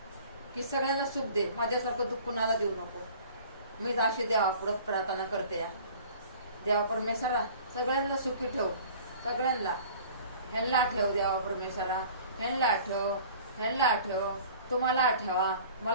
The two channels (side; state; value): both; inverted; correlation -0.47